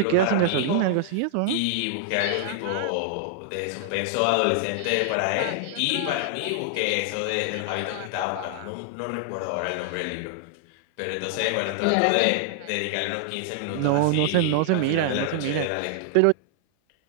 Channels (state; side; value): different; both; correlation -0.01